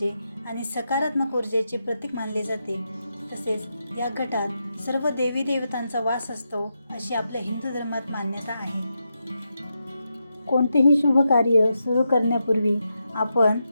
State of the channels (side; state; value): both; inverted; correlation -0.86